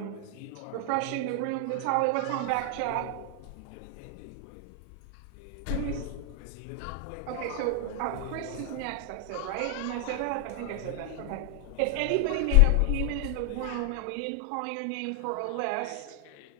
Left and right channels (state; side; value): different; both; correlation 0.00